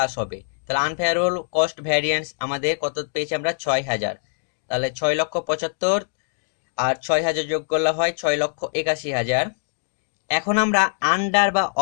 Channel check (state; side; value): silent; right; digital silence